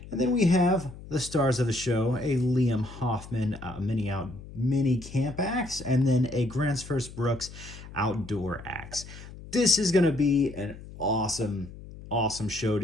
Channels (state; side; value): noise; left; hum, 15 dB below the sound